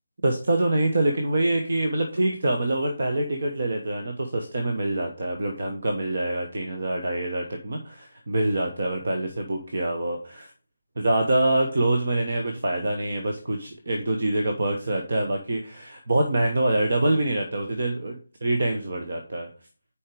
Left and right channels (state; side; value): inverted; both; correlation -0.89